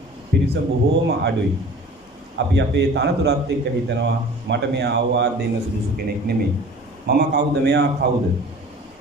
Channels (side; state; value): both; normal; correlation 0.44